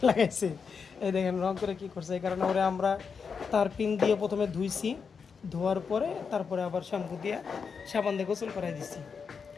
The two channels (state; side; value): quieter; right; 5.8 dB